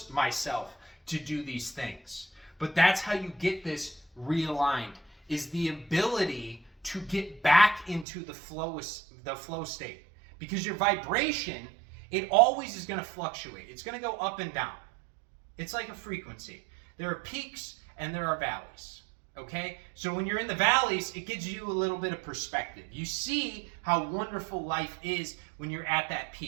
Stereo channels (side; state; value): left; drops out; at 8.1 s